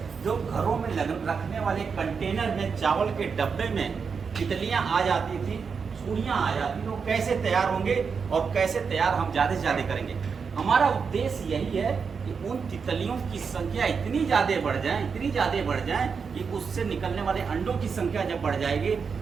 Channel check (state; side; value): quieter; left; 5.8 dB